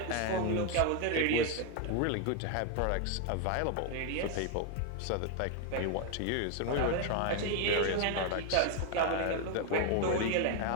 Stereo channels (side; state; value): both; different; correlation 0.01